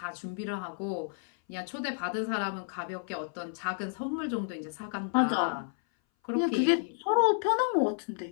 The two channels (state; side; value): silent; right; 57 dB below the other